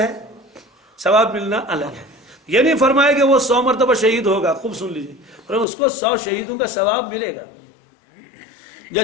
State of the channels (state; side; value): drops out; right; at 5.7 s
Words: ثواب ملنا الگ ہے. یہ نہیں فرمایا کہ وہ 100 مرتبہ شہید ہوگا. خوب سن لیجیے، اس کو 100 شہیدوں کا ثواب ملے گا.